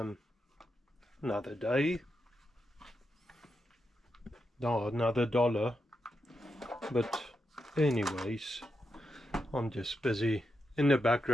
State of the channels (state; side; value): normal; both; correlation 0.86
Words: day, no, another dollar, but anyways, I'm just busy in the